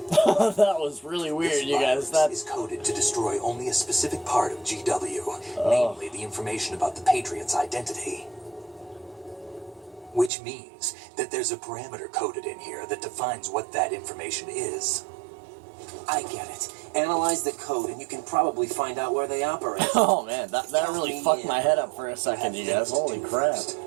That was really weird, This you guys. virus That is coded to destroy only a specific part of GW, namely the information about the Patriot's identity. Which means that there's a parameter coded in here that defines what that information is. I get it. Analyze the code and you can probably find out where they operate. oh man, that really fucked my head up for a second, you guys. Holy crap.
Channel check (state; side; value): drops out; left; at 10.3 s